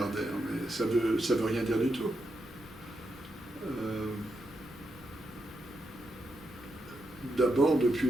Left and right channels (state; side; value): normal; both; correlation 0.84